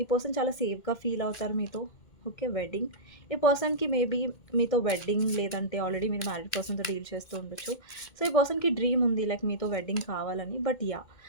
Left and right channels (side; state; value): right; late; 2.1 ms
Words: పర్సన్ చాలా సేఫ్‌గా ఫీల్ అవుతారు మీతో. ఓకే. వెడ్డింగ్. ఈ పర్సన్‌కి మేబీ మీతో వెడ్డింగ్ లేదంటే ఆల్రెడీ మీరు మ్యారీడ్ పర్సన్‌తో డీల్ చేస్తూ ఉండొచ్చు. సో, ఈ పర్సన్‌కి డ్రీమ్ ఉంది లైక్ మీతో వెడ్డింగ్ కావాలని. But yeah!